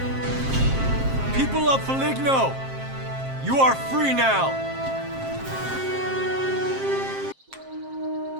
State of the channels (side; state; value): left; late; 7.5 ms